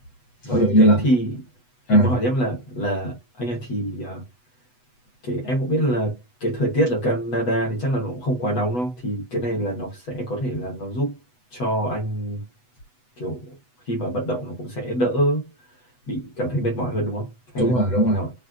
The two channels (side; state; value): right; late; 8.1 ms